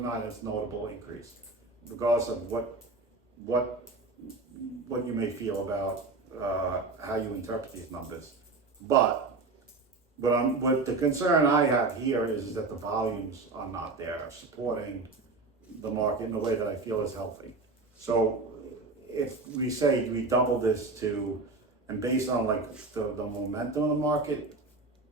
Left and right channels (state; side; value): quieter; left; 3.6 dB